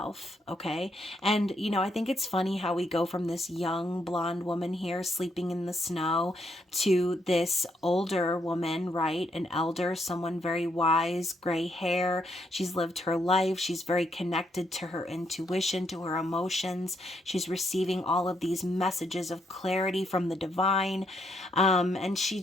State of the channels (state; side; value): normal; both; correlation 0.75